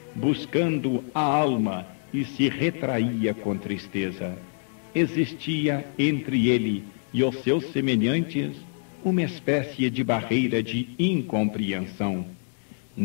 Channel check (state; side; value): silent; right; digital silence